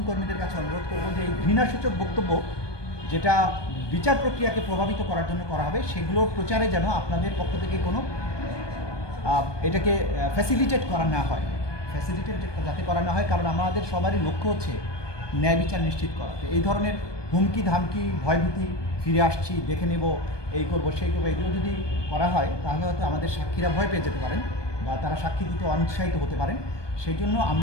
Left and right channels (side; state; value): right; late; 1.2 ms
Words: কর্মীদের কাছে অনুরোধ করব যে এই ঘৃণাসূচক বক্তব্য যেটা বিচার প্রক্রিয়াকে প্রভাবিত করার জন্য করা হবে, সেগুলোর প্রচারে যেন আপনাদের পক্ষ থেকে কোনো এটাকে ফ্যাসিলিটেট করা না হয়, যাতে করা না হয়। কারণ আমাদের সবারই লক্ষ্য হচ্ছে ন্যায় বিচার নিশ্চিত করা। তো এই ধরনের হুমকি ধামকি, ভয়ভীতি, ফিরে আসছি, দেখে নেব, এই করবো সেই করবো, এগুলো যদি করা হয় তাহলে হয়তো আমাদের সাক্ষীরা ভয় পেয়ে যেতে পারেন বা তারা সাক্ষী দিতে অনিৎসাহিত হতে পারেন। সেই জন্য